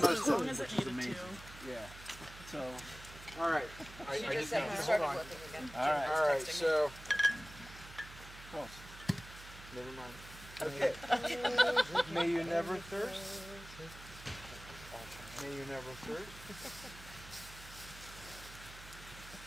most of long it, as it which is needed amazing. to. Yeah. So, all right. I She just just said have you to started hold on. working again. All right. All right. So. Close. Never mind. Okay. May you never thirst. May you never thirst.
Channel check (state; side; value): noise; right; hum, 16 dB below the sound